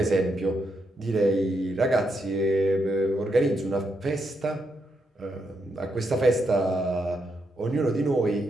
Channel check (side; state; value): both; normal; correlation 0.80